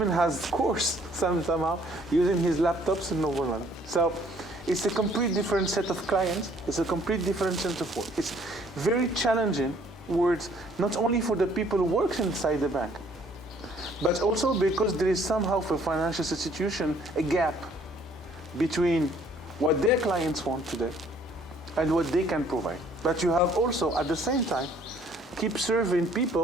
has course somehow using his laptops in Novoland. So it's a complete different set of clients. It's a complete different set of work. It's very challenging words, not only for the people who work inside the bank, but also because there is somehow for financial institution a gap between what their clients want today, and what they can provide. But you have also, at the same time, keep serving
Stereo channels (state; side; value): normal; both; correlation 0.61